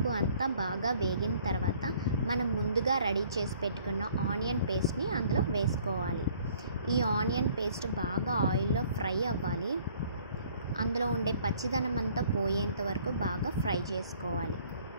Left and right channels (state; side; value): inverted; both; correlation -0.58